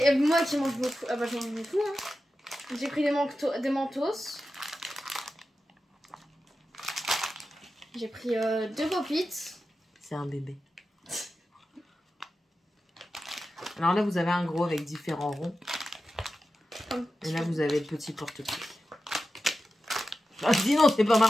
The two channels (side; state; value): both; normal; correlation 0.92